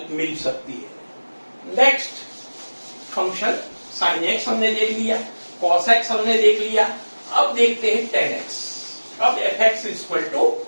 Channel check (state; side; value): inverted; both; correlation -1.00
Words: मिल सकती है। नेक्स्ट फंक्शन sin x हमने देख लिया, cos x हमने देख लिया। अब देखते हैं 10x। अब fx इक्वल टू